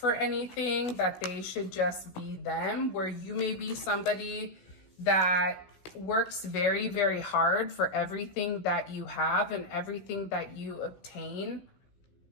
anything, that they should just be them, where you may be somebody that works very, very hard for everything that you have and everything that you obtain,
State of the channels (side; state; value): right; late; 16 ms